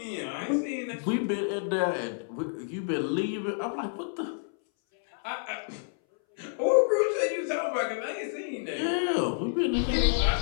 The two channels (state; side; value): silent; right; 59 dB below the other